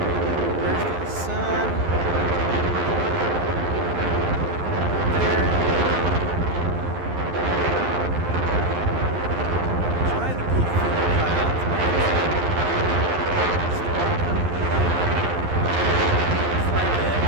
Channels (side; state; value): left; late; 11 ms